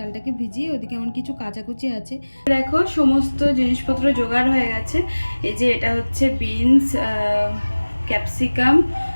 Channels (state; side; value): inverted; both; correlation -1.00